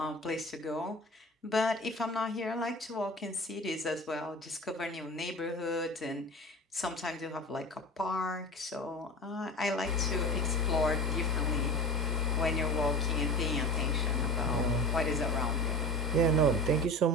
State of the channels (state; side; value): normal; both; correlation 0.32